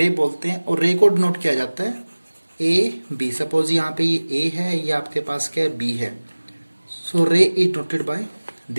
बोलते हैं। और रे को डिनोट किया जाता है ए बी। सपोज यहाँ पे ये ए है, ये आपके पास क्या है? बी है। सो रे is noted by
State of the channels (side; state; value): both; inverted; correlation -1.00